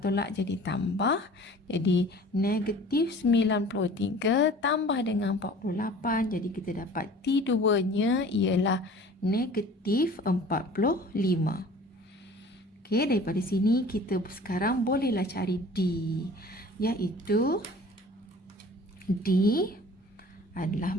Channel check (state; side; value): normal; both; correlation 0.46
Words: jadi tambah. Jadi negatif 93 tambah dengan 48. Jadi kita dapat T2-nya ialah negatif 45. Daripada sini kita sekarang bolehlah cari D, iaitu D adalah